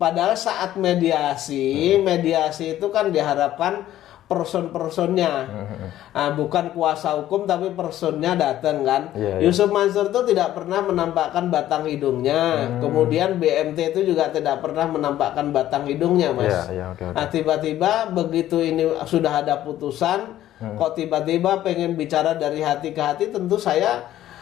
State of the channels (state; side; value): quieter; right; 13.0 dB